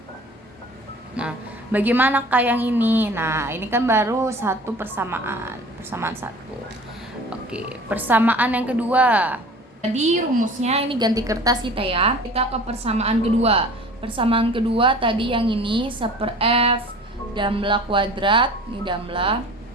Nah, bagaimana Kak yang ini? Nah, ini kan baru satu persamaan satu. Oke, persamaan yang kedua. Tadi rumusnya ini ganti kertas kita ya. Kita ke persamaan kedua. Persamaan kedua tadi yang ini seper F damla kuadrat, ini damla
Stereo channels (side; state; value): both; normal; correlation 0.43